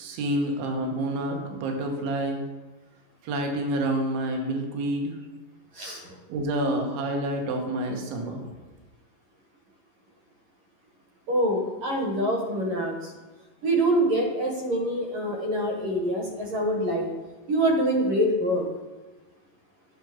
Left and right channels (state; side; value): late; left; 11 ms